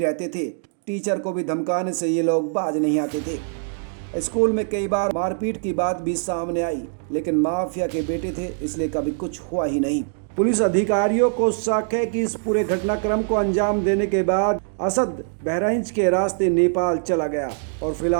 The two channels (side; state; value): left; silent; digital silence